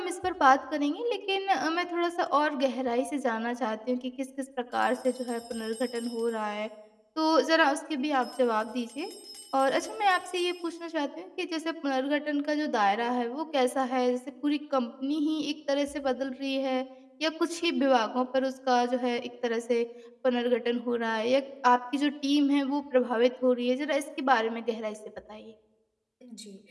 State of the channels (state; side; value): identical; both; correlation 1.00